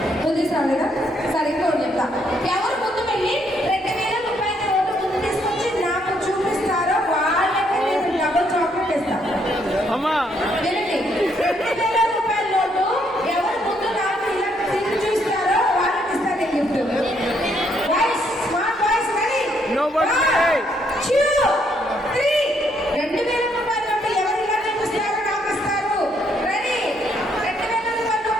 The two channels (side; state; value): both; normal; correlation 0.72